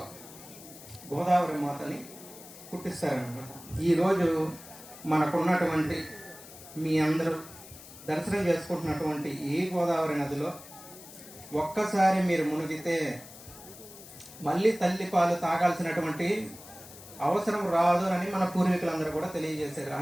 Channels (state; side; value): noise; left; hiss, 17 dB below the sound